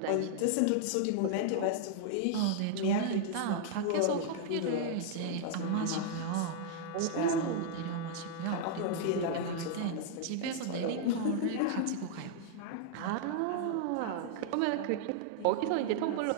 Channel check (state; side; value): different; both; correlation -0.01